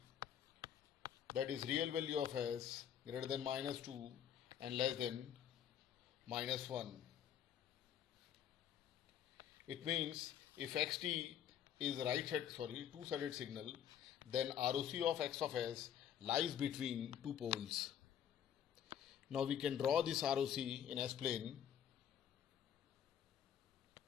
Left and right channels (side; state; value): right; quieter; 9.5 dB